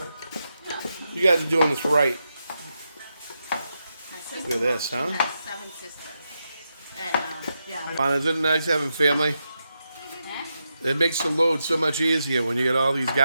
you guys are doing this right. Look at this, huh? 7 sisters. And yeah. Fun, isn't it nice having family? It makes the load so much easier when you get all these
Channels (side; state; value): both; inverted; correlation -0.86